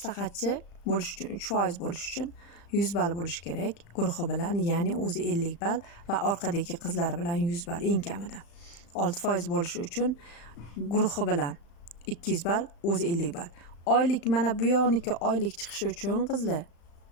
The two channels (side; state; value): right; late; 35 ms